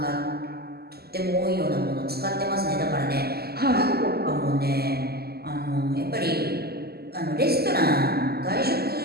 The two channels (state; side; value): late; left; 0.46 ms